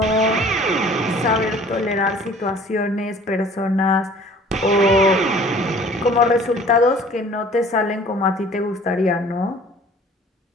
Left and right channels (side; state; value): both; normal; correlation 0.50